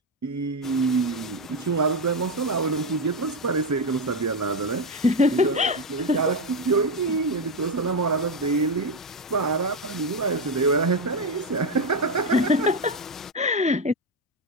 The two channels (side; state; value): both; normal; correlation 0.09